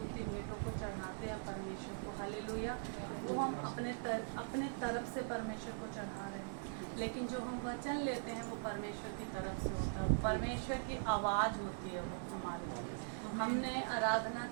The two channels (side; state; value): left; silent; digital silence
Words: भेंटों को चढ़ाते हैं परमेश्वर को, हालेलुया, वो हम अपने तरफ से परमेश्वर को चढ़ा रहे हैं। लेकिन जो हम वचन लेते हैं वो परमेश्वर की तरफ से होता है, परमेश्वर की आवाज़ होती है वो हमारे लिए। हमने आराधना